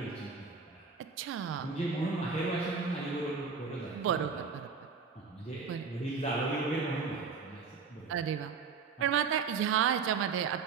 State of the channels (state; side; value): quieter; left; 5.4 dB